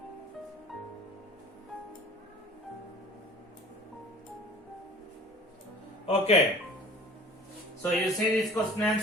Okay, so you see these question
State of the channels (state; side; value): normal; both; correlation 0.45